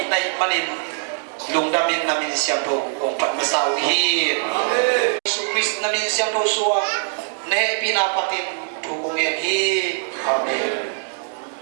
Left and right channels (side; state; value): left; silent; digital silence